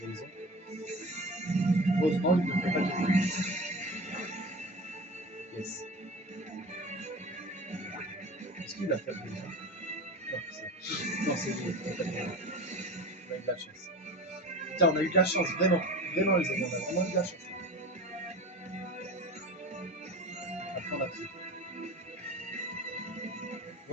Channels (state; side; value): normal; both; correlation 0.34